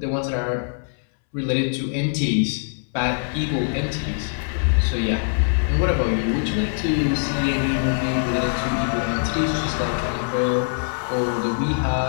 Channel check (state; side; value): silent; right; 64 dB below the other